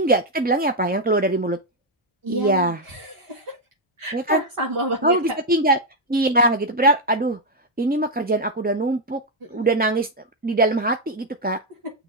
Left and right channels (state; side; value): normal; both; correlation 0.00